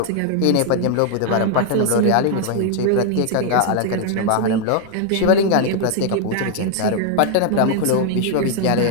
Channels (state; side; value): different; both; correlation 0.00